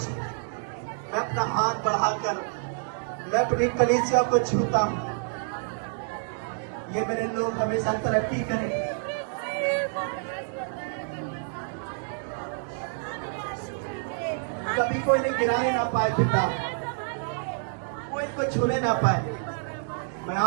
मैं अपना हाथ बढ़ाकर मैं अपनी कलीसिया को छूता हूँ। ये मेरे लोग हमेशा तरक्की करें। कभी कोई नहीं गिराने ना पाए पिता, कोई इनको छूने ना पाए। मैं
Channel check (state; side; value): silent; left; digital silence